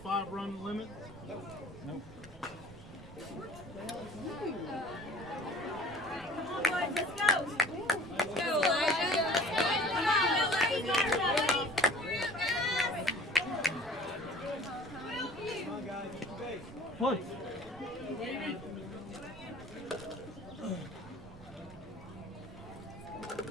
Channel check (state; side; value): noise; right; rumble, 18 dB below the sound